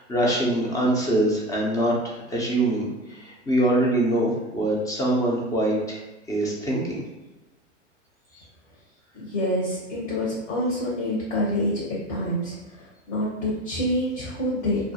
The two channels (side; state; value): both; normal; correlation 0.32